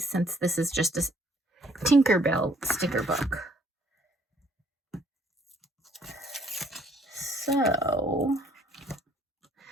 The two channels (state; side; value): normal; both; correlation 0.63